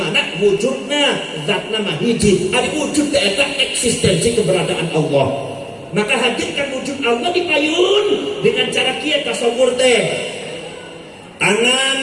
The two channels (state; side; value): identical; both; correlation 1.00